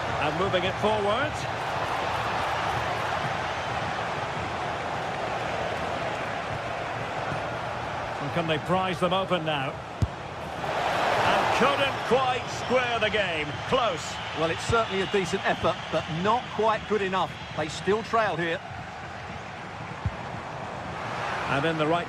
And moving it forward. And can they prise them open now? And couldn't quite square the game. Close. Well, it's certainly a decent effort, but not quite good enough. They still trail here. And in the right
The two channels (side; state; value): both; identical; correlation 1.00